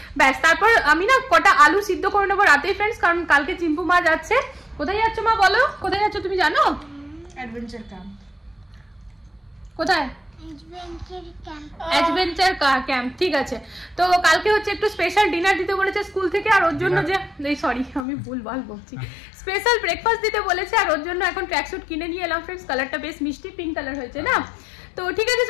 ব্যাস, তারপর আমি না কটা আলু সিদ্ধ করে নেবো রাতেই ফ্রেন্ডস, কারণ কালকে চিম্পু মা যাচ্ছে। কোথায় যাচ্ছ মা বলো, কোথায় যাচ্ছ তুমি জানো? Adventure camp. কোথায়? অ্যাডভেঞ্চার ক্যাম্প, ঠিক আছে। তো কালকে হচ্ছে একটু স্পেশাল ডিনার দিতে বলেছে স্কুল থেকে, আর ওর জন্য যে সরি আমি ভুলভাল বলছি, স্পেশাল ব্রেকফাস্ট দিতে বলেছে, আর ওর জন্য এখন ট্র্যাকস্যুট কিনে নিয়ে এলাম ফ্রেন্ডস, কালারটা বেশ মিষ্টি পিঙ্ক কালার হয়েছে না। তো ঠিক আছে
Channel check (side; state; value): right; drops out; at 18.1 s